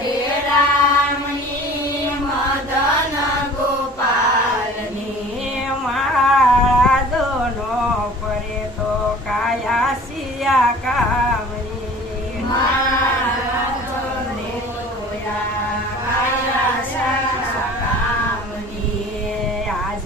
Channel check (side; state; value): both; normal; correlation 0.45